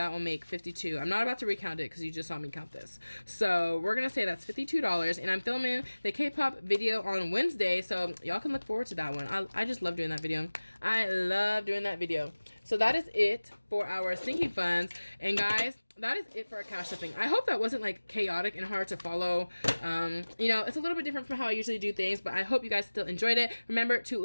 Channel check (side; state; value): both; inverted; correlation -1.00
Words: will make 52. I'm not about to recount it because you just saw me count this. So we're gonna say that's $52, and I'm filming the K-pop video on Wednesday, so y'all can look forward to that one. I just love doing that video. I love doing that video. So that is it for our sinking funds. And guys, that is it for our cash stuffing. I hope that wasn't like chaotic and hard to follow. You know, it's a little bit different from how I usually do things, but I hope you guys still enjoyed it. Remember to